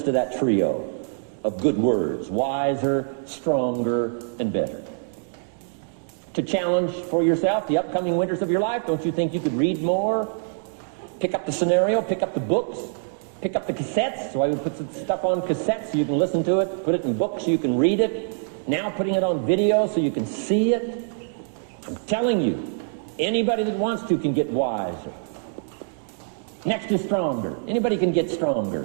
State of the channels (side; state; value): left; silent; digital silence